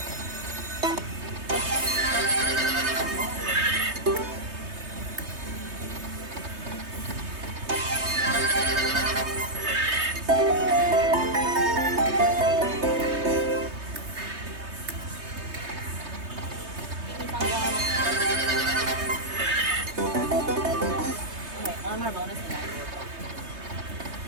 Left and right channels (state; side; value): late; left; 3.2 ms